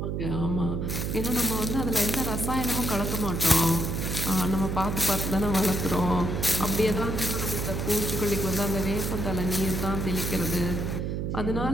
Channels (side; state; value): right; noise; hum, 1 dB below the sound